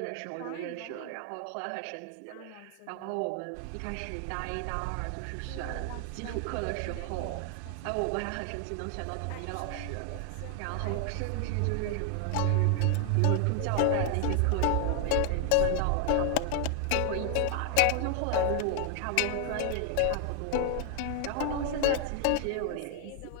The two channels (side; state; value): both; different; correlation 0.00